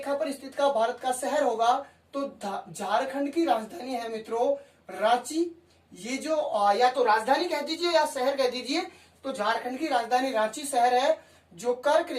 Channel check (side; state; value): both; identical; correlation 1.00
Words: पर स्थित का भारत का शहर होगा तो झारखंड की राजधानी है मित्रों रांची। ये जो या तो राजधानी कह दीजिए या शहर कह दीजिए, तो झारखंड की राजधानी रांची शहर है जो कर्क